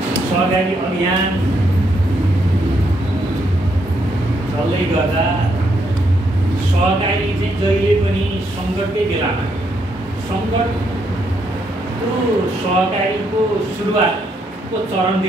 सहकारी अभियान चल्दै गर्दा सहकारी चाहिँ जहिले पनि सङ्कटकै बेलामा सङ्कटको सहकारीको सुरुवातको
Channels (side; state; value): both; normal; correlation 0.76